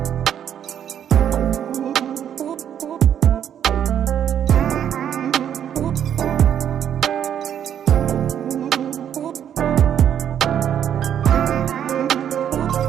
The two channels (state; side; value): quieter; left; 9.5 dB